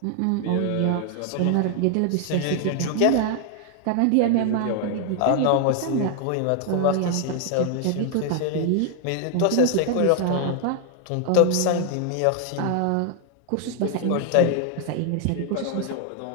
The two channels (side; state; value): both; different; correlation 0.00